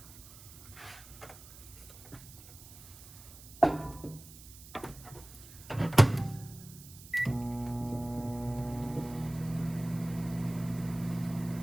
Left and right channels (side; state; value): right; noise; hiss, 18 dB below the sound